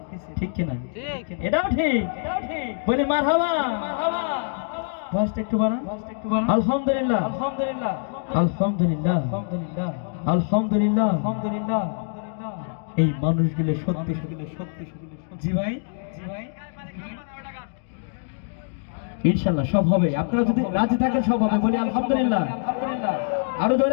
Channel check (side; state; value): right; silent; digital silence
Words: ঠিক কিনা? এটাও ঠিক। বলি মারহাবা। ভয়েসটা একটু বাড়ান। আলহামদুলিল্লাহ আলহামদুলিল্লাহ আলহামদুলিল্লাহ আলহামদুলিল্লাহ আলহামদুলিল্লাহ আলহামদুলিল্লাহ। এই মানুষগুলো সত্যি সত্যি। জি ভাই, জি ভাই, ইনশাআল্লাহ সব হবে। আপনারা যদি রাজি থাকেন সব হবে। বলি আলহামদুলিল্লাহ আলহামদুলিল্লাহ, আরো